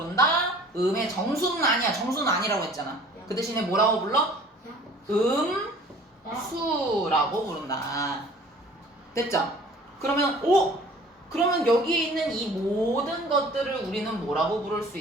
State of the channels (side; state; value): both; normal; correlation 0.49